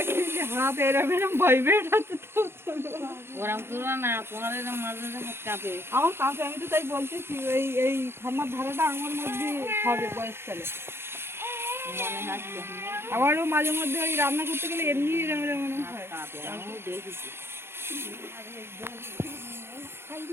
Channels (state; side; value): late; left; 0.12 ms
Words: যে হাত এরম এরম ভাইব্রেট হচ্ছে তো ওরম করো না, তোমার এরকম মাঝে মাঝে হাত কাঁপে। আমার কাছে, আমি তো তাই বলতেছি এই এই ঠান্ডার ধারাটা আমার মধ্যে হবে বয়সকালে। মনে হচ্ছে আমারও মাঝে মধ্যে ওই রান্না করতে গেলে এমনি এরম এরম মনে হাত হয়। কাঁপে, আমিও দেখেছি।